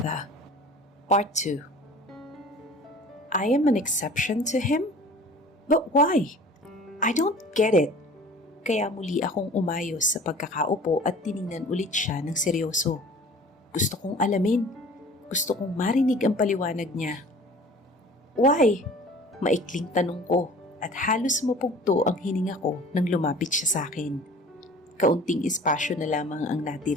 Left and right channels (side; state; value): both; normal; correlation 0.45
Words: Part 2. I am an exception to him? But why? I don't get it. Kaya muli akong umayos sa pagkakaupo at tiningnan ulit siya ng seryoso. Gusto kong alamin. Gusto kong marinig ang paliwanag niya. Why? Maikling tanong ko at halos mapugto ang hininga ko nang lumapit siya sa akin. Kaunting espasyo na lamang ang